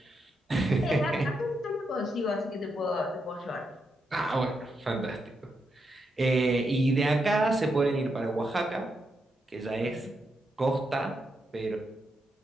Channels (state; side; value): normal; both; correlation 0.83